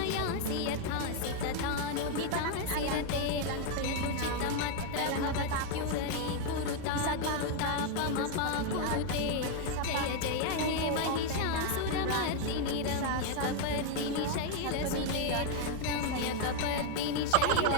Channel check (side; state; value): both; different; correlation 0.01